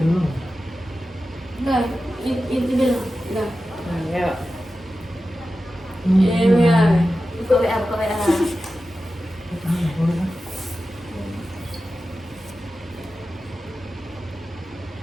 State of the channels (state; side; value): normal; both; correlation 0.93